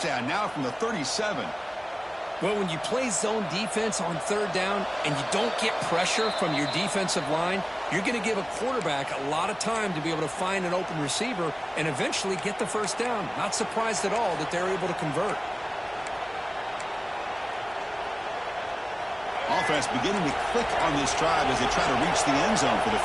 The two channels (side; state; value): both; identical; correlation 1.00